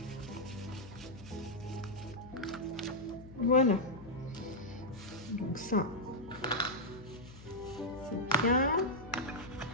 Voilà. Donc ça, c'est bien.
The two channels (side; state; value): left; noise; hum, 17 dB below the sound